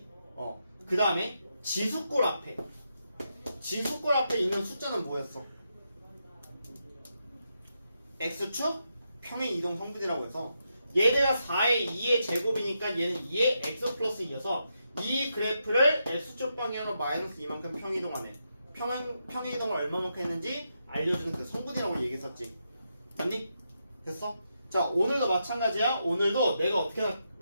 그 다음에 지수꼴 앞에 있는 숫자는 뭐였어? x축 평행 이동 성분이라고 해서 얘네가 4의 2의 제곱이니까 얘는 2의 x 플러스 2여서 이 그래프를 x축 방향으로 마이너스 2만큼 평이동하네. 평이동을 얼마만큼 했는지 알려주는 그 성분이라고 얘기했었지. 맞니? 됐어? 자, 오늘도 마찬가지야. 오늘도 내가 어떻게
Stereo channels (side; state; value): both; inverted; correlation -0.84